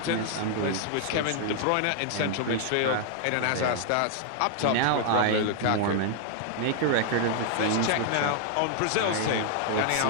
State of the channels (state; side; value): different; both; correlation 0.00